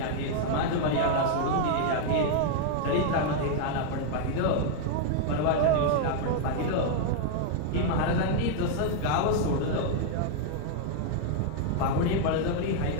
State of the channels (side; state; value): both; different; correlation 0.00